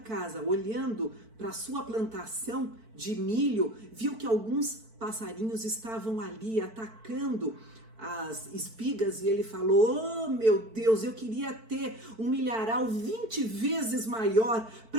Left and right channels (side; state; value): left; late; 4.5 ms